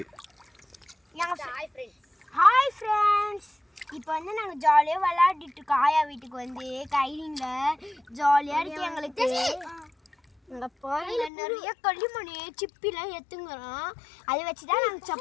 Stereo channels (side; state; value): right; drops out; at 11.3 s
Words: ஹாய் ஃப்ரெண்ட்ஸ், இப்போ வந்து நாங்கள் ஜாலியாக விளையாடிட்டு இருக்கோம். ஆயா வீட்டுக்கு வந்து கைலிங்கில் ஜாலியாக இருக்கு எங்களுக்கு. எங்கள் பாருங்க நிறைய களிமணி சிப்பிலாம் எடுத்துங்கிறோம். அதை வச்சு தான் நாங்கள்